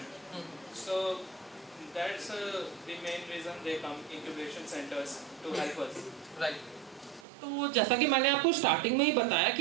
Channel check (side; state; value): left; drops out; at 7.2 s